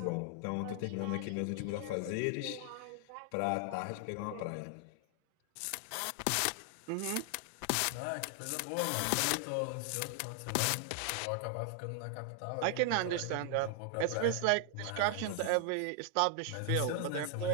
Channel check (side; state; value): both; different; correlation 0.00